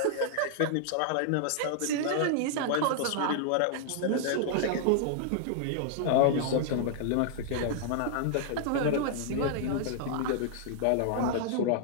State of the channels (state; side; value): different; both; correlation -0.01